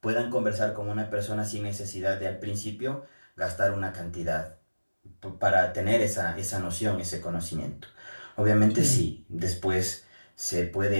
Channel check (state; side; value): inverted; both; correlation -1.00